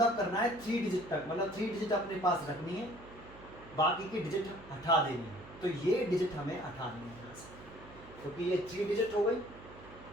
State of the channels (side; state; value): right; noise; hum, 19 dB below the sound